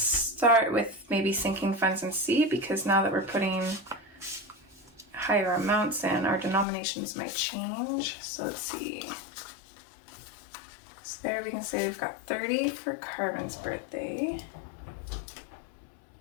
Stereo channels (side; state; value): right; drops out; at 6.7 s